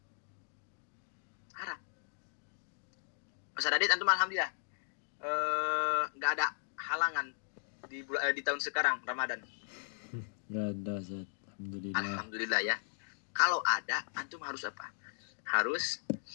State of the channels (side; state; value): right; silent; digital silence